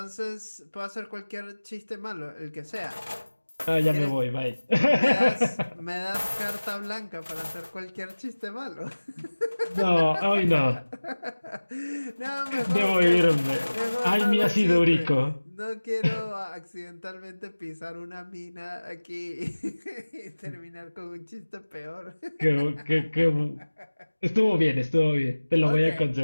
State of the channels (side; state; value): both; inverted; correlation -1.00